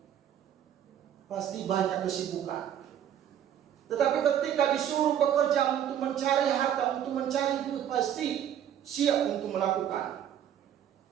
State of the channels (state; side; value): quieter; left; 10.0 dB